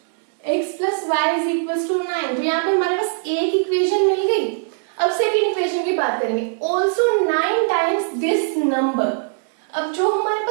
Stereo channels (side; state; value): left; silent; 65 dB below the other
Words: x plus y is equal to 9। तो यहाँ पे हमारे पास एक इक्वेशन मिल गई। अब सेकेंड इक्वेशन की बात करेंगे। Also 9 times this number. अब जो हमारे